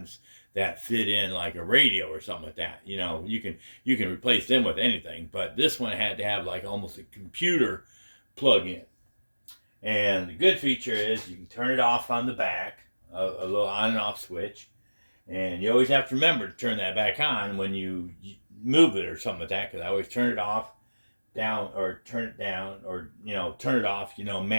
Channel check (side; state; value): both; inverted; correlation -1.00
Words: that fit in like a radio or something like that. You know, you can replace them with anything, but this one had to have like almost a computer plug in. And the good feature is you can turn it off on the back, a little on and off switch, and you always have to remember to turn that back on when you move it or something like that, because I always turn it off down or turn it down, or turn it off,